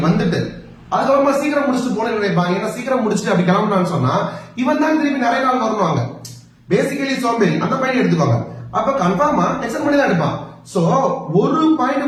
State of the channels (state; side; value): identical; both; correlation 1.00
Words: வந்துட்டு அதுக்கப்புறமா சீக்கிரம் முடிச்சுட்டு போன நினைப்பாங்க. ஏன்னா சீக்கிரம் முடிச்சுட்டு அப்படி கிளம்புனான்னு சொன்னா இவன் தான் திருப்பி நிறைய நாள் வரணுவாங்க. பேசிக்கலி சோம்பேறி அந்த பாயிண்ட் எடுத்துக்கோங்க. அப்ப கன்ஃபார்மா எக்ஸ்டெண்ட் பண்ணி தான் எடுப்பான். சோ ஒரு